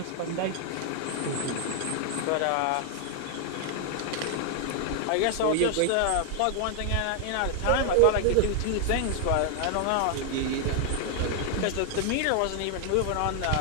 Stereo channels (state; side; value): different; both; correlation 0.00